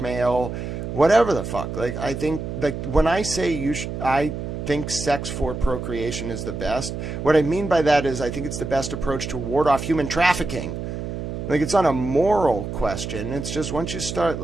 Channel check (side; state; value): right; noise; hum, 6 dB below the sound